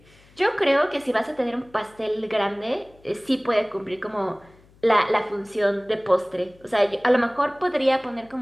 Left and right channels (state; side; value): noise; left; hum, 28 dB below the sound